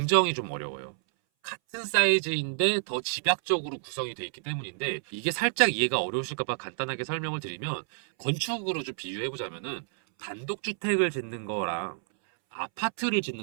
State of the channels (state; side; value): silent; left; 58 dB below the other